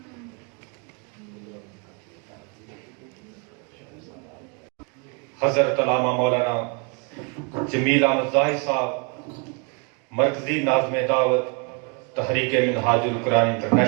حضرت علامہ مولانا جمیل احمد ظاہر صاحب، مرکزی ناظم دعوت تحریک منہاج القرآن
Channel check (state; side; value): quieter; left; 34.0 dB